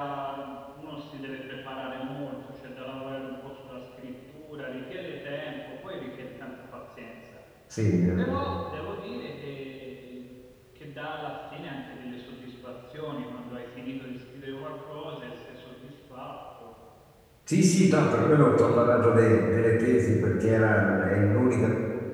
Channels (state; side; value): identical; both; correlation 1.00